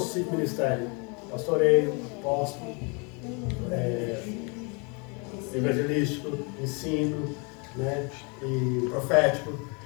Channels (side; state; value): right; quieter; 32.8 dB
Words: 5 ministérios? Pastoreio, apóstolo, evangelístico, ensino, né, e profético.